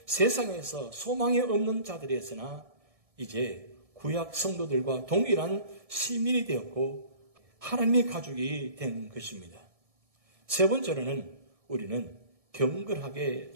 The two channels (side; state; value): left; late; 1.6 ms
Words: 세상에서 소망이 없는 자들이었으나 이제 구약 성도들과 동일한 시민이 되었고 하나님의 가족이 된 것입니다. 세 번째로는 우리는 경건하게